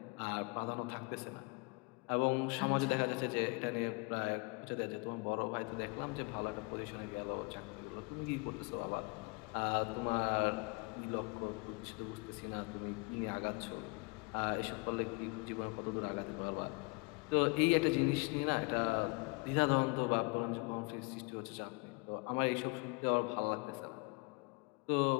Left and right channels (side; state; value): right; quieter; 30.2 dB